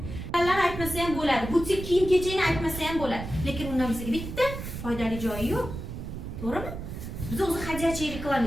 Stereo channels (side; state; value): right; noise; rumble, 8 dB below the sound